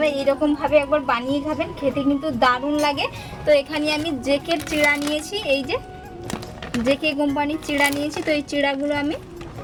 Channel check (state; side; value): identical; both; correlation 1.00